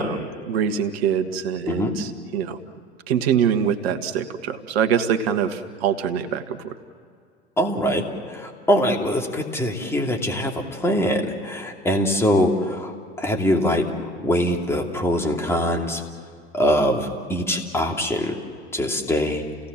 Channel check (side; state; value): both; normal; correlation 0.46